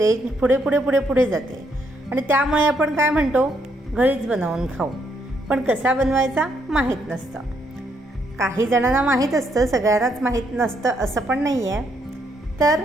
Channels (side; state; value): both; normal; correlation 0.74